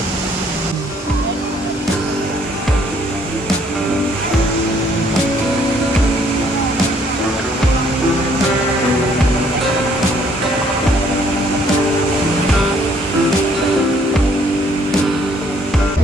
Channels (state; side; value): normal; both; correlation 0.64